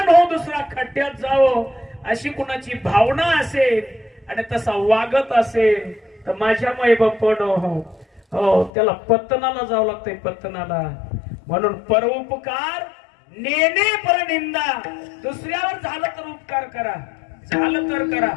हो, दुसरा खड्ड्यात जावो अशी कुणाची भावना असेल आणि तसा वागत असेल तर माझ्या माई बापण हो त्याला पत्तनाला जावं लागतंय, पत्तनाला. म्हणून परोपकार नेने परनिंदा. दुसऱ्यावर झालं तर उपकार करा, झालं तर करा.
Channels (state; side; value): drops out; right; at 8.7 s